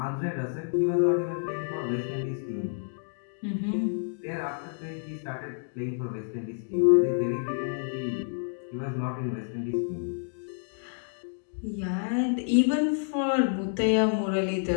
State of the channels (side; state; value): right; silent; digital silence